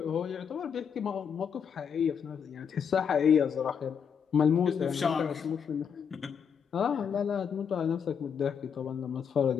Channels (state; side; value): quieter; right; 7.1 dB